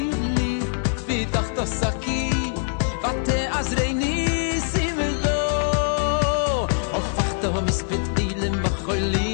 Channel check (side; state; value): right; silent; digital silence